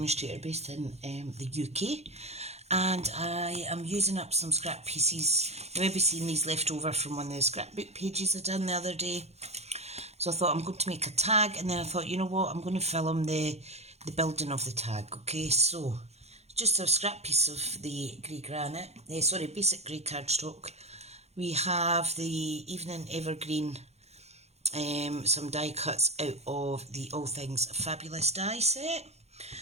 based in the UK. And I am using up some scrap pieces. You may be seeing these left over from one of the scrapbook pages I done the other day. So I thought I'm going to make a tag, and then I thought, you know what, I'm going to film the building of the tag. Okay, so just a scrap piece of the grey granite, basic grey cardstock. We have the Evening Evergreen, some die cuts out of the All Things Fabulous die set.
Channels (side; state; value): left; late; 0.31 ms